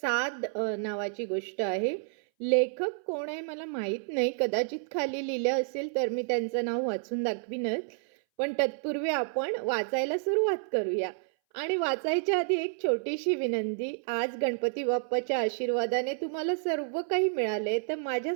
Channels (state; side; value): silent; left; 58 dB below the other